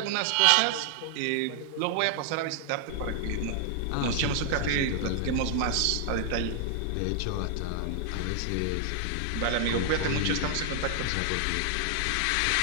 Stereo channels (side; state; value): both; different; correlation 0.00